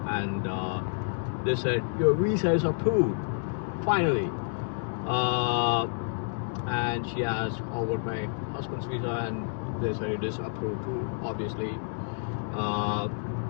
and they said your visa is approved finally. And she asked about my husband's visa, and they said it is approved too, obviously.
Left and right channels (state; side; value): silent; right; digital silence